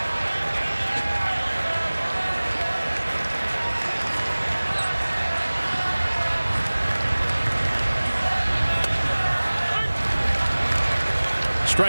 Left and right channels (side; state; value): both; inverted; correlation -1.00